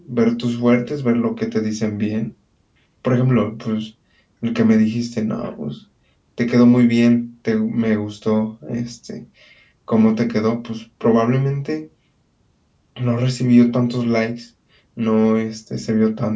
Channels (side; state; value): both; identical; correlation 1.00